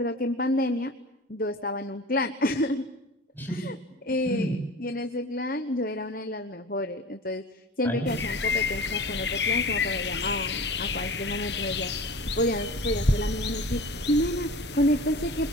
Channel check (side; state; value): both; normal; correlation 0.37